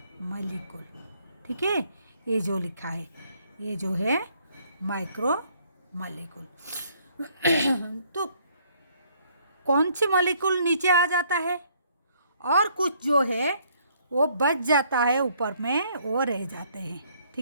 मॉलिक्यूल, ठीक है। ये जो लिखा है ये जो है माइक्रो मॉलिक्यूल। तो कौन सी मॉलिक्यूल नीचे आ जाता है, और कुछ जो है वो बच जाता है ऊपर में, वो रह जाते हैं,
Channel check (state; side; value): inverted; both; correlation -0.65